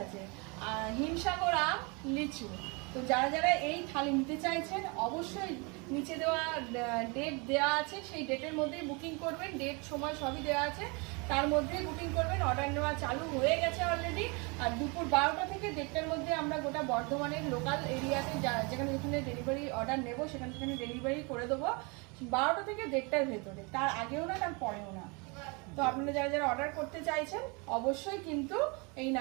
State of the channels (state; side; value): quieter; left; 30.4 dB